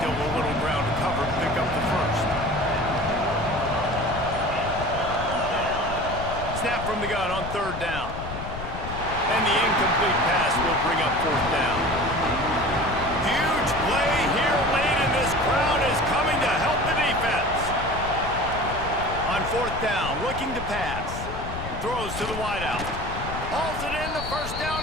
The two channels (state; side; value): noise; left; rumble, 8 dB below the sound